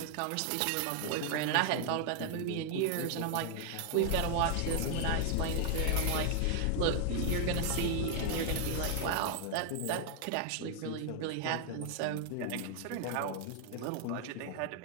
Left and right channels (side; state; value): both; different; correlation 0.00